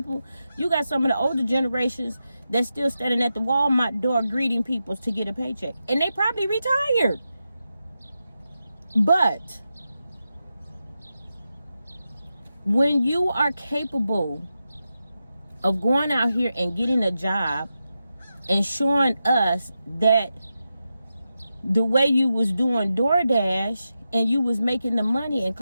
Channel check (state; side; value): inverted; both; correlation -0.89